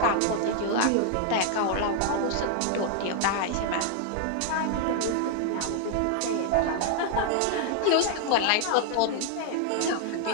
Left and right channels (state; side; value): different; both; correlation 0.00